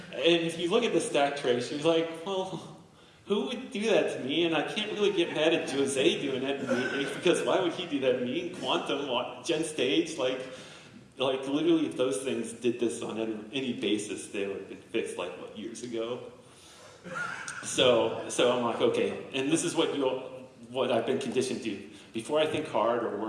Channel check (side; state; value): both; identical; correlation 1.00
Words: look at the stack trace, you're like, well, who would do that to me? And I can't really get mad at Jose doing that to me, because why would he do that to me? Quantum, Gen Stage, like literally, if those things did this on any basis, they would have been fixed years ago. So I'm like, okay, and this is what I've been conditioned to. Before I think hard or